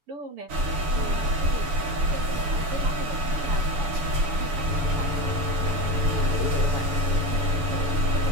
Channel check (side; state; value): left; late; 7.0 ms